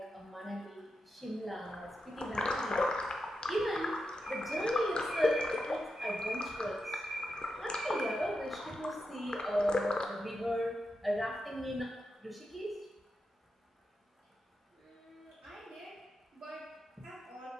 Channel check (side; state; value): both; normal; correlation 0.87